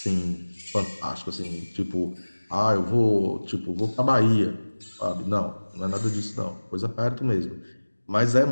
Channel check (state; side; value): inverted; both; correlation -1.00